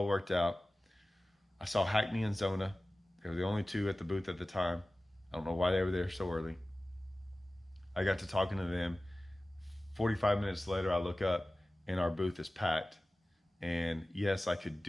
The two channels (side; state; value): both; normal; correlation 0.97